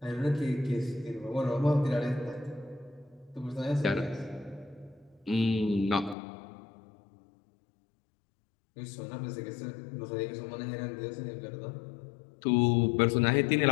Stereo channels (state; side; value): drops out; right; at 6.2 s